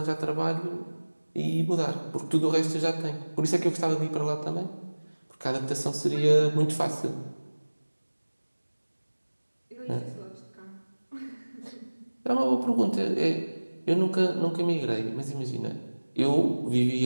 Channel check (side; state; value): both; inverted; correlation -1.00